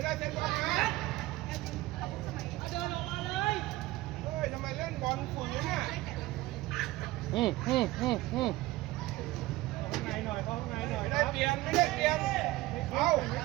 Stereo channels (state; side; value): quieter; left; 17.9 dB